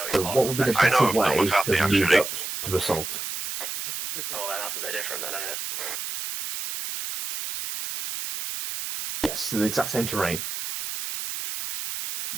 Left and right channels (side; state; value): right; noise; hiss, 6 dB below the sound